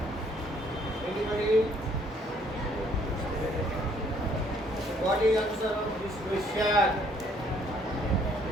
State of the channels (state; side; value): normal; both; correlation 0.64